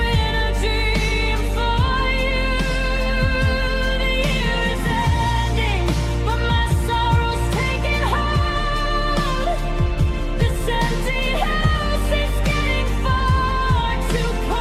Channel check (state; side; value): identical; both; correlation 1.00